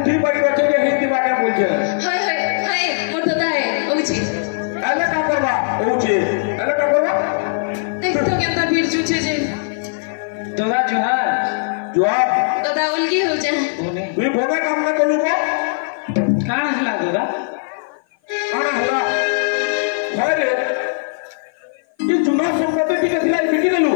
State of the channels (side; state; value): right; silent; 55 dB below the other